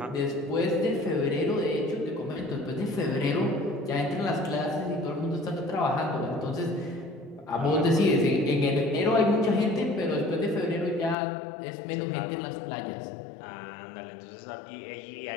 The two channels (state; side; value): drops out; right; at 11.2 s